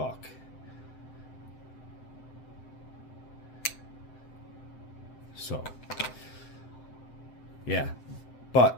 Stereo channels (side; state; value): right; late; 7.8 ms